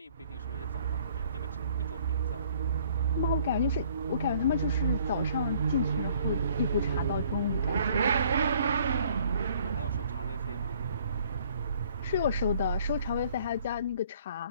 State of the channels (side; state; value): both; inverted; correlation -0.59